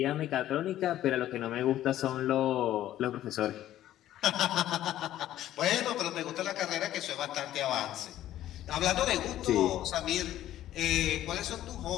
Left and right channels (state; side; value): quieter; right; 13.0 dB